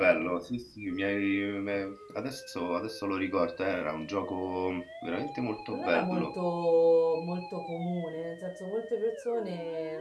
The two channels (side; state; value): both; identical; correlation 1.00